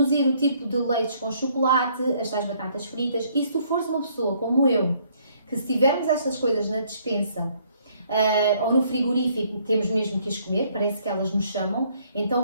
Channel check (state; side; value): inverted; both; correlation -0.65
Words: o tipo de leites com chocolate, as tais batatas fritas, e se tu fores uma pessoa como eu, que se tivermos estas coisas na despensa ou no frigorífico, temos mesmo que as comer, parece que elas nos chamam,